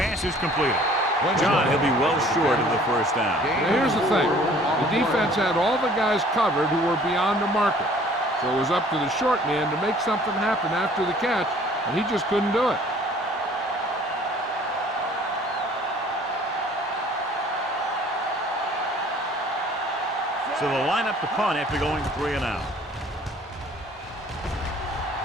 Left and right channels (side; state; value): both; normal; correlation 0.54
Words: is completed. John, he'll be well short of the first down. Now, here's the thing. The defense had all the guys covered who were beyond the marker. So it was up to the short man to make something happen after the catch, and he just couldn't do it. So they'll line up to punt after going 3 and out.